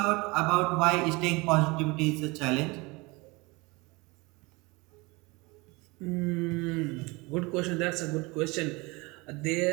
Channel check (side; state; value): left; quieter; 25.2 dB